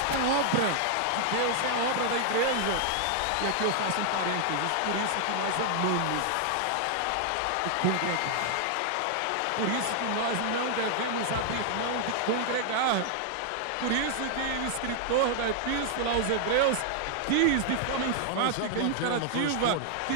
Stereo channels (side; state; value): both; different; correlation -0.01